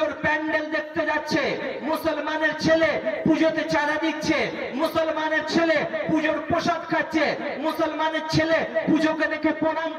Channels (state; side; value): identical; both; correlation 1.00